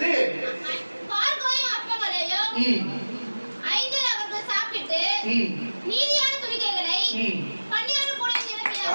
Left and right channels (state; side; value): inverted; both; correlation -1.00